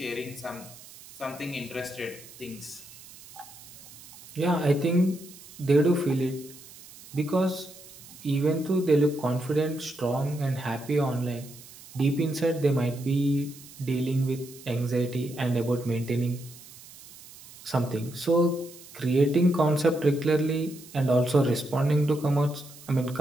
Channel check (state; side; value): noise; right; hiss, 19 dB below the sound